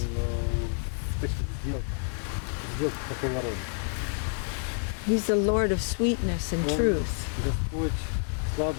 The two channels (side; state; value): right; silent; 59 dB below the other